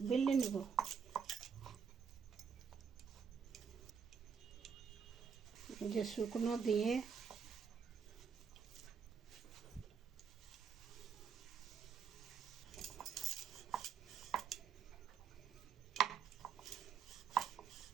বেলে নেব। যে শুকনো দিয়ে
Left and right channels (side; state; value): left; quieter; 6.4 dB